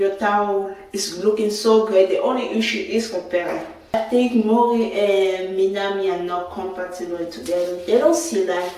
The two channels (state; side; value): identical; both; correlation 1.00